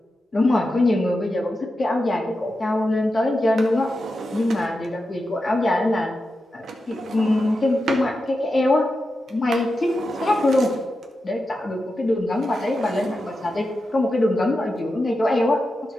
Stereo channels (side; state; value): both; normal; correlation 0.90